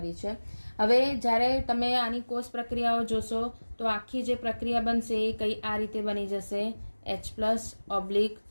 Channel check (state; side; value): inverted; both; correlation -1.00